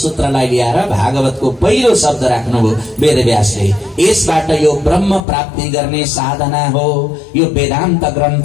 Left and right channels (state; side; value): drops out; right; at 5.2 s